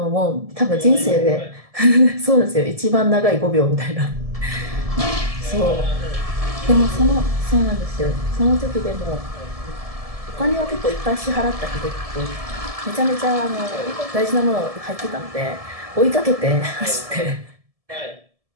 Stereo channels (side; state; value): left; late; 1.7 ms